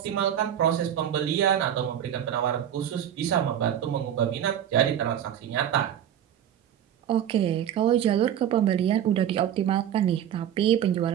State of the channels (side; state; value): left; quieter; 10.1 dB